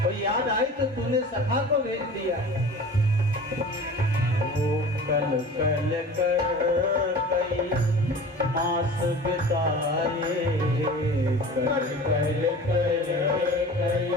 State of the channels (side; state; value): both; normal; correlation 0.39